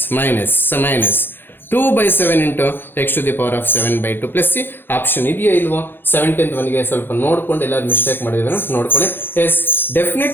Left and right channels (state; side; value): late; right; 0.10 ms